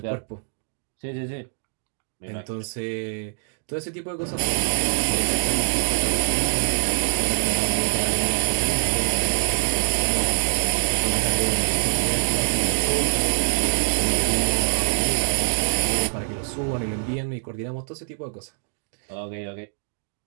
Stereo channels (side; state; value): left; silent; digital silence